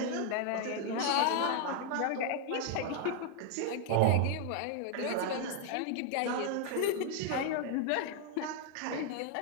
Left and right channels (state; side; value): different; both; correlation 0.00